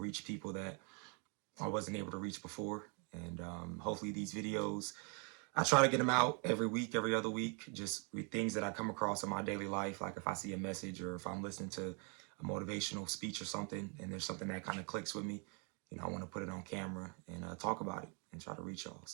people that I wasn't able to reach before. And hopefully these videos, I try to get them out every week, every other week, just with things that I come across in my daily life. Like if I see a message or if I'm listening to a motivational speech or something and there's something that kind of clicks with me, I want to put it on camera and talk about it and try to reach y'all.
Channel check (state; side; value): quieter; left; 36.1 dB